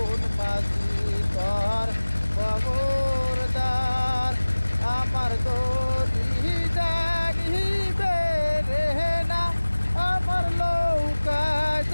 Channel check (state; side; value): inverted; both; correlation -1.00